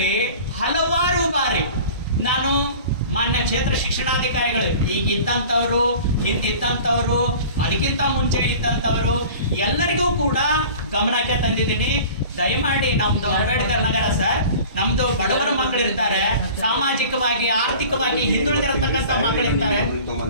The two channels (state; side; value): inverted; both; correlation -0.42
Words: ಹಲವಾರು ಬಾರಿ ನಾನು ಮಾನ್ಯ ಕ್ಷೇತ್ರ ಶಿಕ್ಷಣಾಧಿಕಾರಿಗಳು, ಈಗ ಇದ್ದಂಥವ್ರು, ಹಿಂದಿದ್ದಂಥವ್ರು, ಅದಕ್ಕಿಂತ ಮುಂಚೆ ಇದ್ದಂಥವ್ರು ಎಲ್ಲರಿಗೂ ಕೂಡ ಗಮನಕ್ಕೆ ತಂದಿದ್ದೀನಿ. ದಯಮಾಡಿ ನಮ್ದು ಅಂಬೇಡ್ಕರ್ ನಗರ ಸರ್, ನಮ್ದು ಬಡವರ ಮಕ್ಕಳಿರ್ತಾರೆ, ಸಾಮಾಜಿಕವಾಗಿ ಆರ್ಥಿಕವಾಗಿ ಹಿಂದುಳಿದಿರತಕ್ಕಂಥ ಮಕ್ಕಳಿರ್ತಾರೆ.